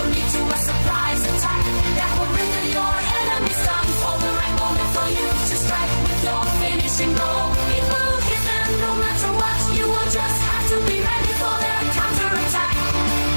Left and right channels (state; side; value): inverted; both; correlation -1.00